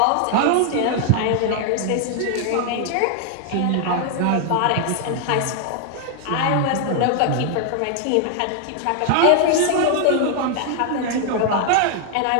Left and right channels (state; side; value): different; both; correlation 0.00